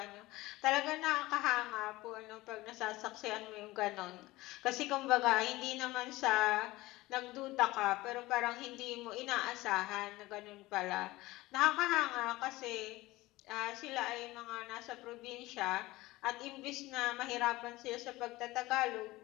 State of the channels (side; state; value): right; quieter; 19.1 dB